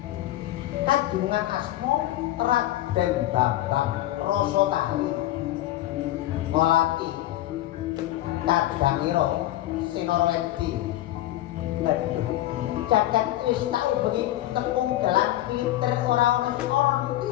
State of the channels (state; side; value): quieter; right; 14.9 dB